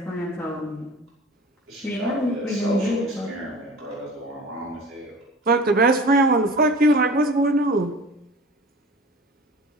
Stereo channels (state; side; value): normal; both; correlation 0.39